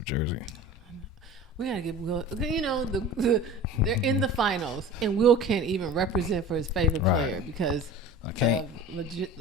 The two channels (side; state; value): both; normal; correlation 0.38